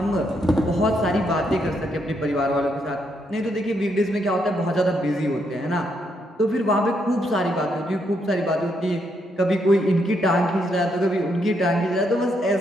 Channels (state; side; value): normal; both; correlation 0.77